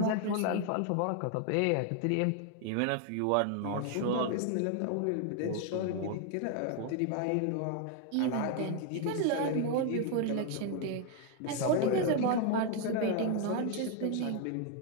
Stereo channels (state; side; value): different; both; correlation 0.00